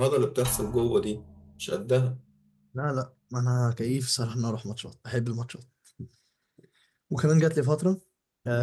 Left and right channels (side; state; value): both; identical; correlation 1.00